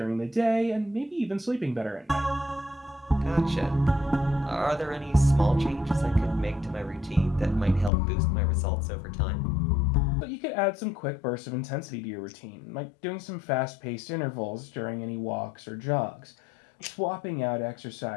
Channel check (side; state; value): right; drops out; at 7.9 s